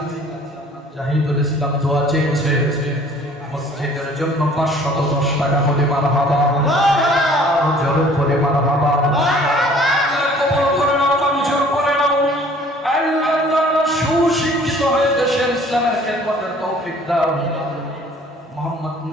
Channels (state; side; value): normal; both; correlation 0.53